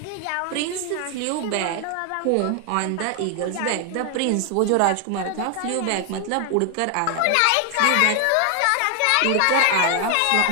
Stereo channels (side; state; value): both; different; correlation 0.00